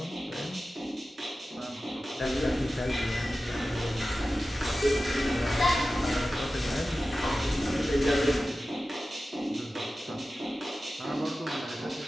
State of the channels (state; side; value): normal; both; correlation 0.95